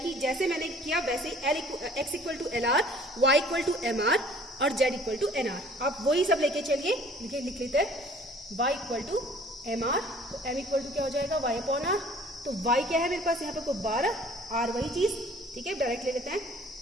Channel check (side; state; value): both; normal; correlation 0.53